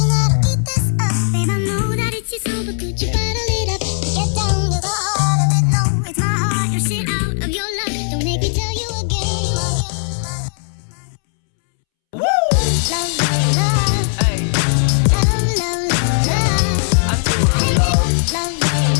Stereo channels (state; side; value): silent; right; 67 dB below the other